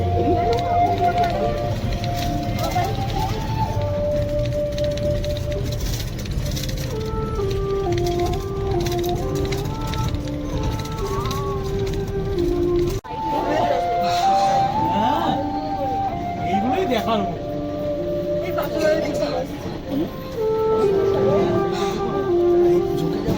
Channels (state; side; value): identical; both; correlation 1.00